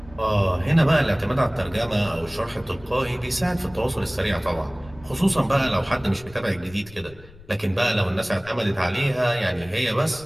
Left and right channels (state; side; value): noise; left; rumble, 21 dB below the sound